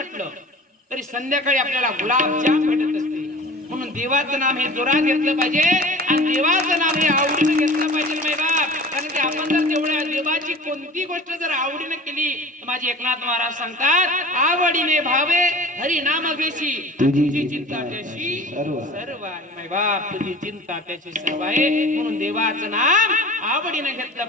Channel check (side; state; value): both; normal; correlation 0.41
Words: तरी संध्याकाळी आपल्याला गुलाबजाम भेटत असते. म्हणून देवाचं नाम हे जोरात घेतलं पाहिजे आणि देवाचं नाम हे आवडीनं घेतलं पाहिजे मे बाप. कारण की आपण जर तेवढ्या देवाची कोणती गोष्ट जर आवडीने केली तर माझे एकनाथ महाराज सांगतात, आवडीने भावे हरी नाम घेशी तुझी चिंता त्याशी सर्व आहे. माय बाप तुझी चिंता त्याची सर्व आहे. म्हणून देवाचं नाम आवडीने घेतलं